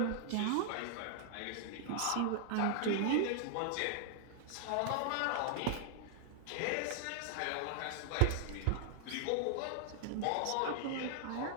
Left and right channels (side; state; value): both; different; correlation 0.00